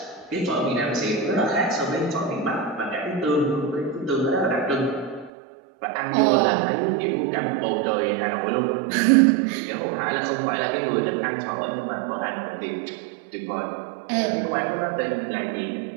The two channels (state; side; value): drops out; left; at 5.3 s